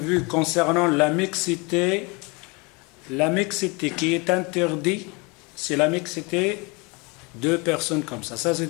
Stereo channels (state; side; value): quieter; right; 28.4 dB